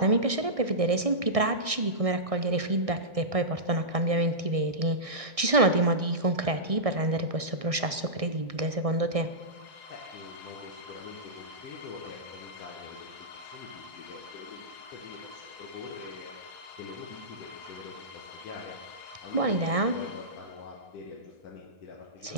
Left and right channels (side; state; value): left; late; 1.6 ms